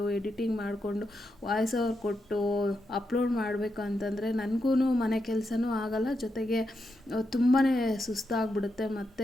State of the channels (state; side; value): normal; both; correlation 0.85